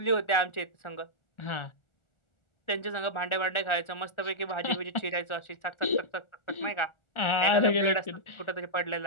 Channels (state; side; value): late; right; 1.4 ms